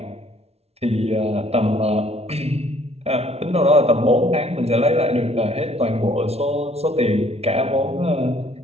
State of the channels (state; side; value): late; left; 0.30 ms